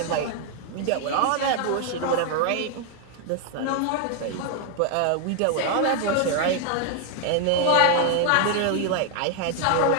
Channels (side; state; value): both; different; correlation 0.00